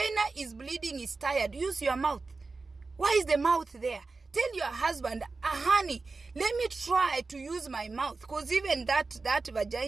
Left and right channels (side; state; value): left; quieter; 3.9 dB